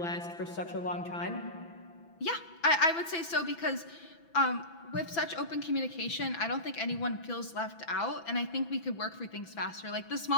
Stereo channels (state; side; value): late; right; 6.0 ms